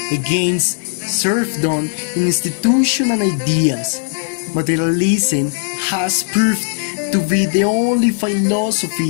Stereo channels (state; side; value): silent; right; 55 dB below the other